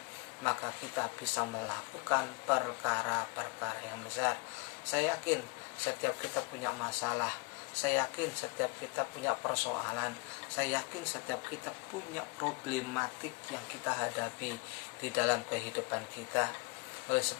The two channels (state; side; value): quieter; right; 30.0 dB